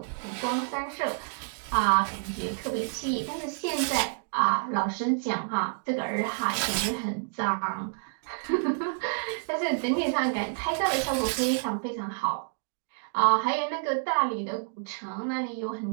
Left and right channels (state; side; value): silent; left; digital silence